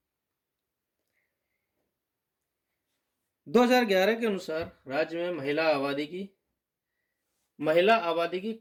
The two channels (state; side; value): identical; both; correlation 1.00